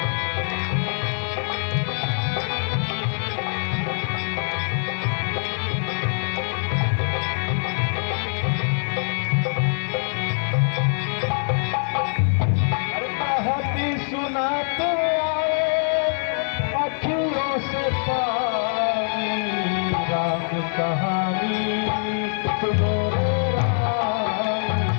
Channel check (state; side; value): silent; right; 63 dB below the other